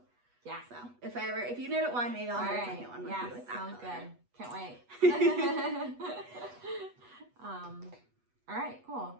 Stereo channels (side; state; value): left; late; 8.2 ms